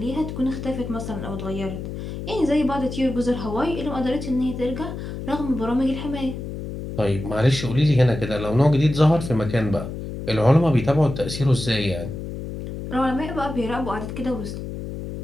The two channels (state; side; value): noise; left; hum, 7 dB below the sound